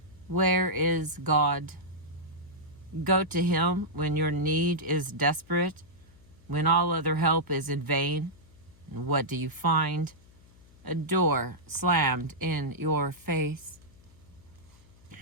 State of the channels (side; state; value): left; noise; hum, 26 dB below the sound